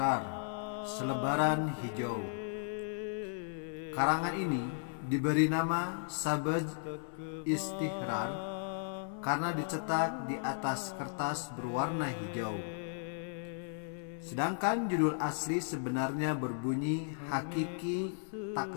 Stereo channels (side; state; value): right; silent; 54 dB below the other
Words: selebaran hijau. Karangan ini diberi nama Sabaz Istihrar karena dicetak di atas kertas berwarna hijau. Sedangkan judul asli sebenarnya berbunyi Hakiki